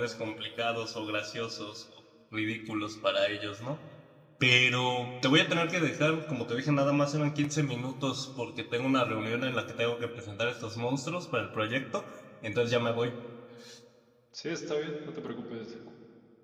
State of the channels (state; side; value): identical; both; correlation 1.00